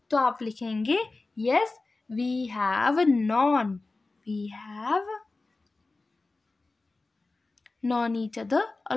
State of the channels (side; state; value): right; quieter; 3.4 dB